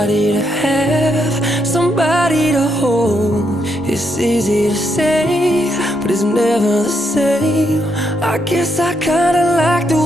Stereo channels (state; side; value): normal; both; correlation 0.78